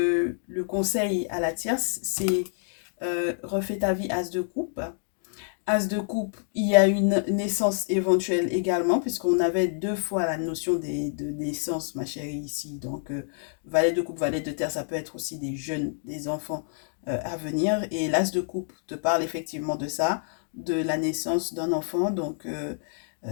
conseil à la tierce, c'est refais ta vie as de coupe. As de coupe, il y a une naissance éventuelle également, puisqu'on avait 2 fois la notion de naissance, ma chérie, ici. Donc, valet de coupe, valet de terre, ça peut être aussi des jeunes, des enfants à venir. Et l'as de coupe te parle effectivement de ça, de la naissance d'un enfant. Donc,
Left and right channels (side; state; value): right; silent; digital silence